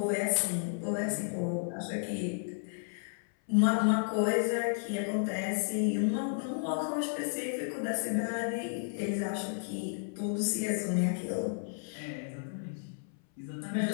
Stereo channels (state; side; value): silent; right; 56 dB below the other